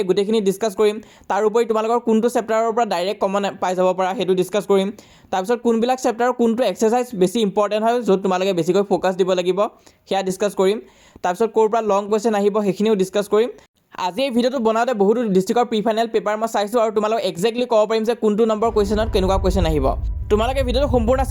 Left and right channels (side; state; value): both; identical; correlation 1.00